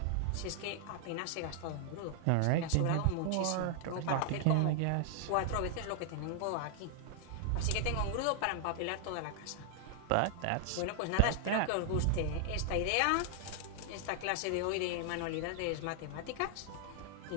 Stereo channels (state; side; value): different; both; correlation 0.00